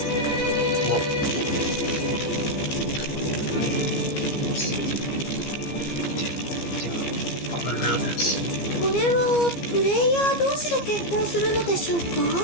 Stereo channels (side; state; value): right; late; 15 ms